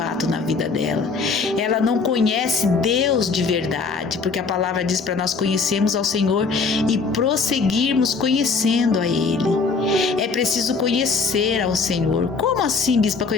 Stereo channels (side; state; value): right; quieter; 4.6 dB